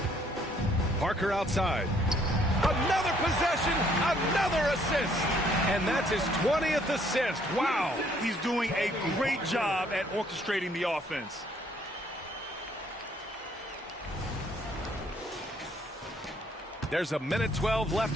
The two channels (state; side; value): normal; both; correlation 0.65